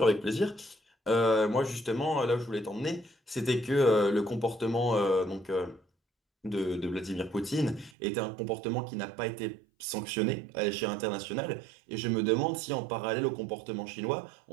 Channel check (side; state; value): left; drops out; at 8.0 s